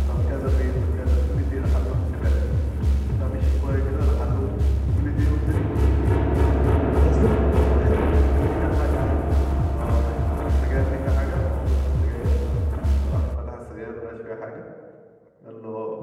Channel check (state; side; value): identical; both; correlation 1.00